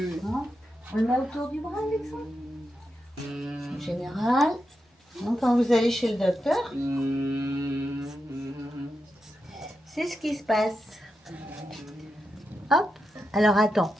Hein? On le met autour du bras, Alexandre. En général, donc, quand vous allez chez le docteur, c'est ce qui se passe. Hop. Alors attends,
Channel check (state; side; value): normal; both; correlation 0.87